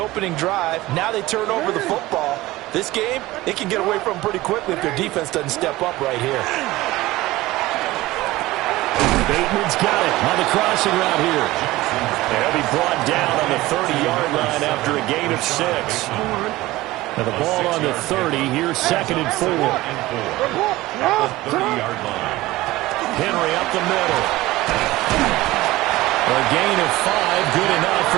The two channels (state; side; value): quieter; left; 18.2 dB